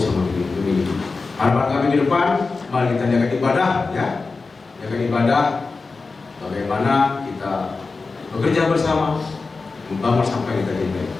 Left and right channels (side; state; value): right; quieter; 4.1 dB